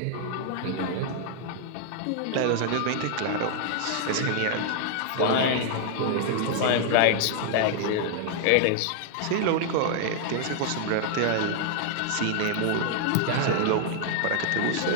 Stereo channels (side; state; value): both; different; correlation -0.01